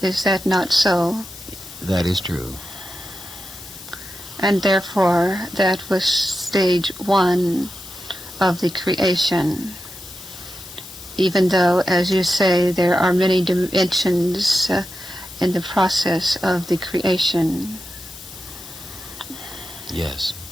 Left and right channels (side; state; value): left; noise; hiss, 15 dB below the sound